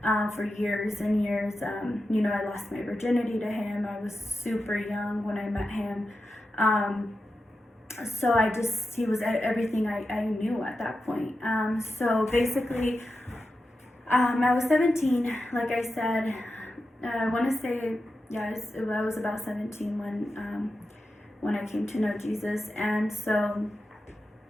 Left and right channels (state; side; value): normal; both; correlation 0.90